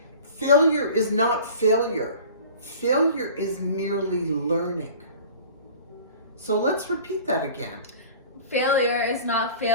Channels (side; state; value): both; inverted; correlation -0.43